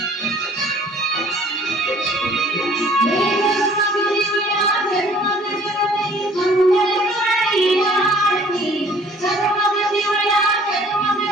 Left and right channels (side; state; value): both; normal; correlation 0.55